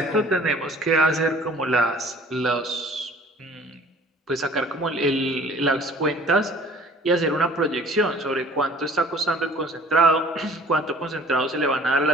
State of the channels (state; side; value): normal; both; correlation 0.51